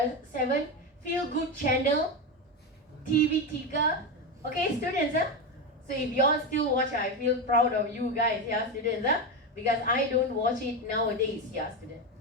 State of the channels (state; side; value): normal; both; correlation 0.14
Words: 7, Feel Good Channel, TV 3. Okay, students, so if you all still watch, I feel proud of you guys, yeah, students, because I don't watch it nowadays, yeah, students.